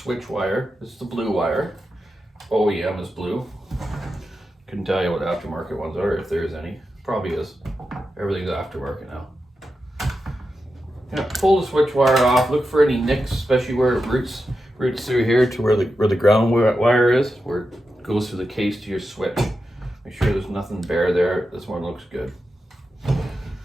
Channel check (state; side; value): normal; both; correlation 0.89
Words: wire. This is the blue wire. OEM is blue. Couldn't tell you what aftermarket ones are, if there's any. Probably is. Everything's aftermarket now. Yeah, pull the switch wire off. Look for any nicks, especially where it roots through here to where the ground wire is, where it goes through the case to your switch. Make sure there's nothing bare there. This one looks good.